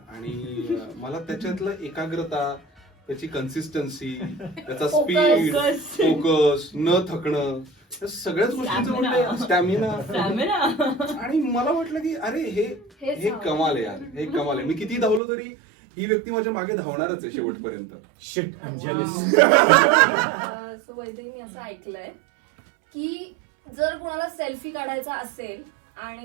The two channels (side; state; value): left; drops out; at 15.2 s